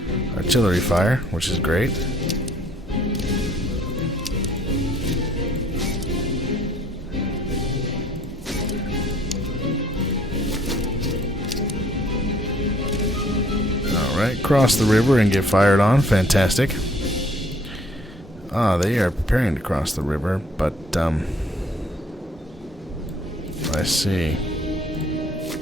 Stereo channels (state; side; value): normal; both; correlation 0.60